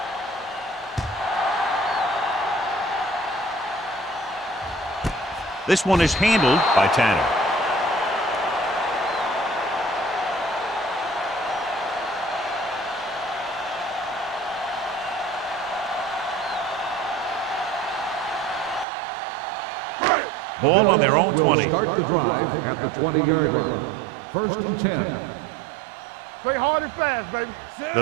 This one is handled by Tanner. Ball on their own 20. Will start the drive at the 20-yard line. 1st and 10. Play hard and fast, baby.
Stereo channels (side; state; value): left; drops out; at 18.9 s